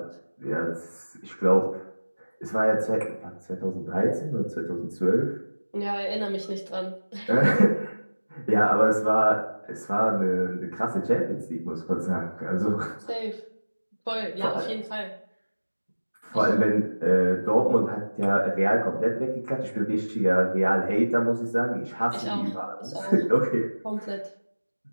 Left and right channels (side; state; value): both; inverted; correlation -1.00